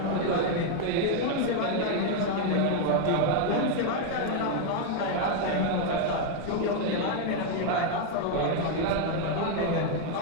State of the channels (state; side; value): different; both; correlation 0.01